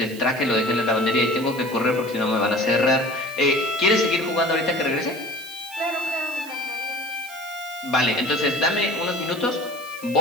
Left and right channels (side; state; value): right; noise; hiss, 17 dB below the sound